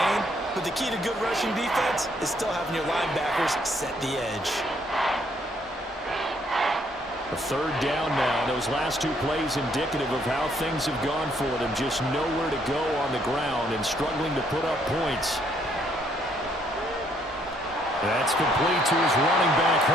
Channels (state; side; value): normal; both; correlation 0.68